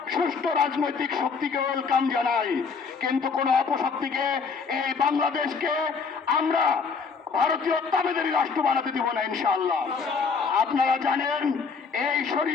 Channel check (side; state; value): right; quieter; 5.3 dB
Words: সুষ্ঠু রাজনৈতিক শক্তিকে ওয়েলকাম জানাই, কিন্তু কোন অপশক্তিকে এই বাংলাদেশকে আমরা ভারতীয় তাবেদারি রাষ্ট্র বানাতে দিব না ইনশাআল্লাহ। আপনারা জানেন এই